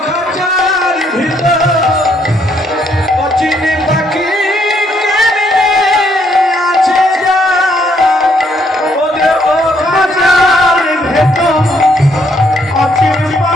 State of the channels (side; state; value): both; normal; correlation 0.70